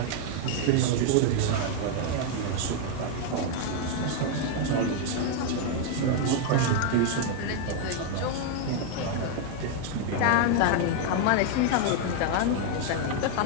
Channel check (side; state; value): both; different; correlation 0.00